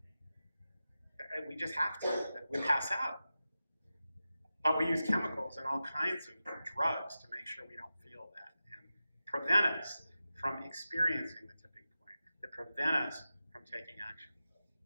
We just have to. We pass out. But we use chemicals and all kinds of drugs to make sure we don't feel that and prevent us from experiencing the tipping point, that prevent us from taking action.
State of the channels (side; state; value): both; inverted; correlation -0.93